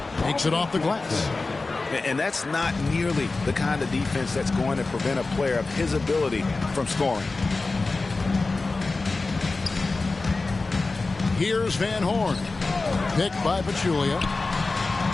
takes it off the glass. And that's not nearly the kind of defense that's going to prevent a player of his ability from scoring. Here's Van Horn. Picked by Pachulia.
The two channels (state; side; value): quieter; right; 3.6 dB